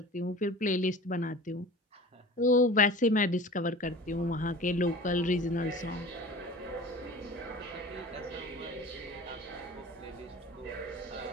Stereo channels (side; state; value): both; normal; correlation 0.38